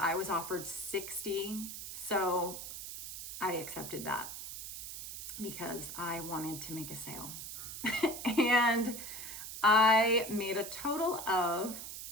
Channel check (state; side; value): noise; right; hiss, 9 dB below the sound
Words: was offered $60. So I accepted that because I wanted to make a sale. And I made a total of,